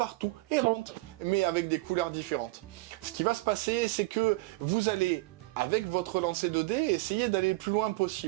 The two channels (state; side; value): quieter; left; 21.7 dB